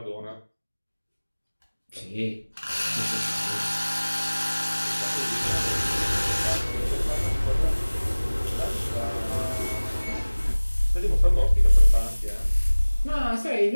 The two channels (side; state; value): both; inverted; correlation -1.00